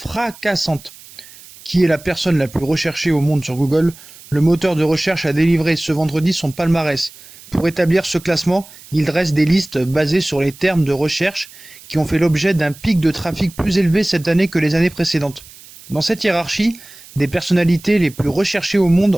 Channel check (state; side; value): noise; right; hiss, 21 dB below the sound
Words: Qui est la personne la plus recherchée au monde sur Google? Le moteur de recherche a délivré ce vendredi son palmarès. Pour établir ce classement, il dresse des listes basées sur les termes de recherche qui ont fait l'objet d'un pic de trafic plus élevé cette année que les années précédentes. Dans cette hiérarchie des personnalités les plus recherchées au monde